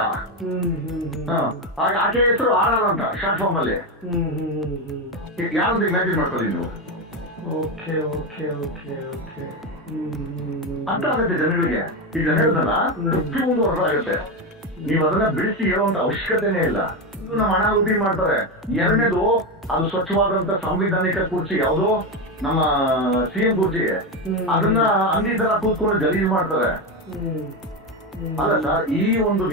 ಆಕೆ ಹೆಸರು ಆರ್ ಅಂತ ಶಾರ್ಟ್ ಫಾರ್ಮ್ ಅಲ್ಲಿ. ಯಾವ್ದು ಇಮ್ಯಾಜಿನ್ ಮಾಡ್ಕೊಳ್ಳಿ ನೀವು. ಅಂತ ಆಗುತ್ತೆ ಜನಗಳಿಗೆ. ಈಗ ಹೇಳ್ದಲ್ಲ, 51 ವರ್ಷ ಆಗುತ್ತೆ. ನೀವು ಅದನ್ನ ಬಿಡಿಸಿ ಹೇಳುವಂತ ಅವಶ್ಯಕತೆನೇ ಇಲ್ಲ. ಇದು ನಮ್ಮ ಹಣ ಉಪಿ ಮಾಡ್ತಾರೆ. ಎರಡನೇದು, ಅದು ಸ್ವಚ್ಛವಾದಂತ ಸಾಂವಿಧಾನಿಕ ಕುರ್ಚಿ, ಯಾವುದೋ ನಮ್ಮ ಸಿಎಂ ಕುರ್ಚಿ, ಅದನ್ನ ಅಂದಿ ತರ ಕೂತ್ಕೊಂಡು ಗಲೀಜ್ ಮಾಡ್ತಾರೆ. ಅಲ್ಲ ಸರ್, ಈ ಒಂದು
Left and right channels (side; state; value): both; normal; correlation 0.13